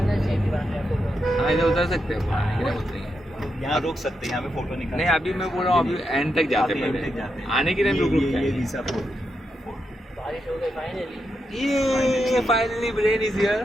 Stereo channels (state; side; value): normal; both; correlation 0.84